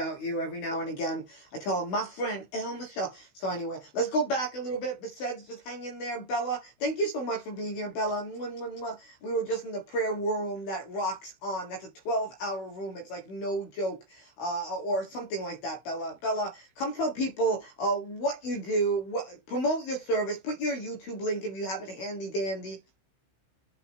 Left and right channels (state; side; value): late; right; 15 ms